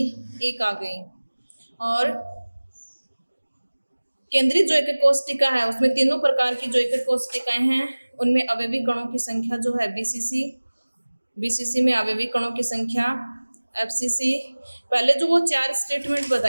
1 आ गई। और केंद्रित जो एक कोष्टिका है उसमें तीनों प्रकार की जो एक कोष्टिकाएं हैं उनमें अवयवी कणों की संख्या जो है बीसीसी में अवयवी कणों की संख्या, एफसीसी पहले जो वो 4 स्टेटमेंट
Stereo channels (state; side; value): inverted; both; correlation -1.00